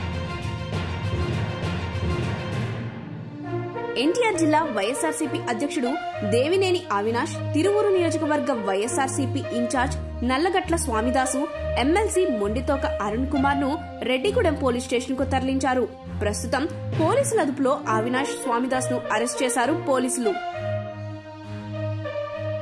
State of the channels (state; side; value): identical; both; correlation 1.00